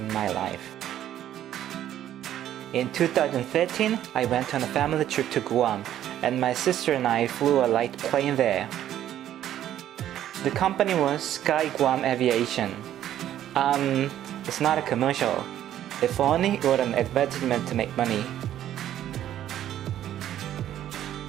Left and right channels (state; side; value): quieter; left; 11.6 dB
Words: my life. In 2013, I went on a family trip to Guam and my sister and I flew a light plane there. The company was Sky Guam Aviation. It's not a commercial. If only it were an advertisement to make money.